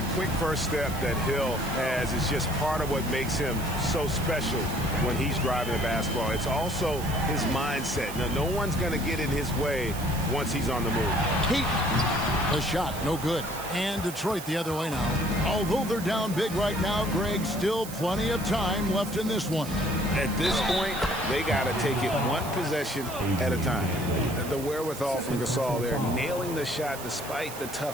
quick first step that Hill has is just part of what makes him so special when he's driving the basketball. It's also his mindset. Now, no one's going to get in his way once he's on the move. Payton. The shot, no good. And Detroit the other way now. Although they're down big right now, Greg, still plenty of time left in this one. At this point, they got to take it one possession at a time. The wherewithal from Gasol there, nailing the shot despite the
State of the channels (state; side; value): noise; right; hiss, 12 dB below the sound